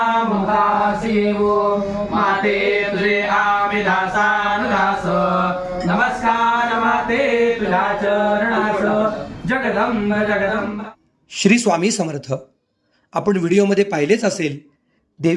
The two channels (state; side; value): identical; both; correlation 1.00